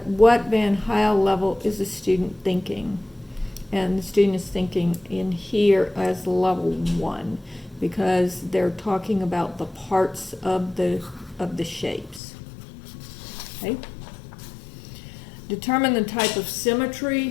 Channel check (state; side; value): drops out; right; at 12.2 s